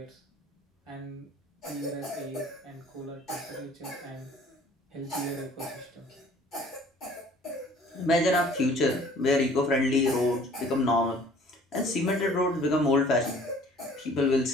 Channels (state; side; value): normal; both; correlation 0.53